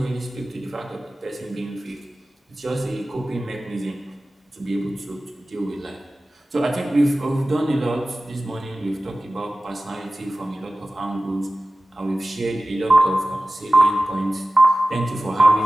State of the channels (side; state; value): both; normal; correlation 0.97